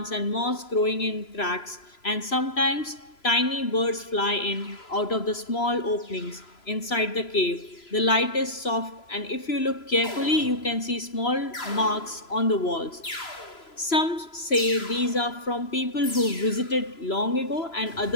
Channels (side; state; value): right; late; 3.0 ms